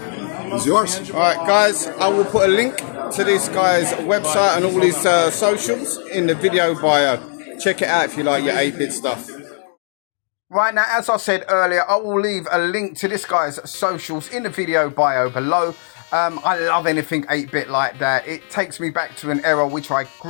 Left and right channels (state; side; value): silent; right; 61 dB below the other